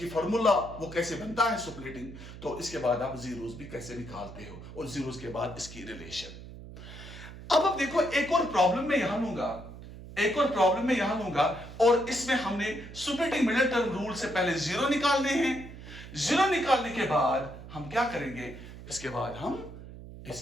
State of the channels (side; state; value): right; noise; hum, 14 dB below the sound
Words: फॉर्मूला वो कैसे बनता है सुपरेटिंग, तो इसके बाद आप जीरोस भी कैसे निकालते हो और जीरोस के बाद इसकी रिलेशन। अब देखो एक और प्रॉब्लम में यहां लूंगा, एक और प्रॉब्लम में यहां लूंगा, और इसमें हमने सुपरेटिंग मिडिल टर्म रूल से पहले जीरो निकालने हैं। जीरो निकालने के बाद हम क्या करेंगे, इसके बाद हम